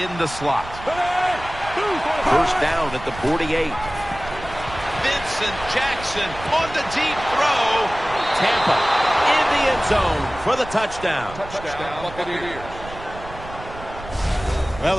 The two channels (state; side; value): noise; right; rumble, 14 dB below the sound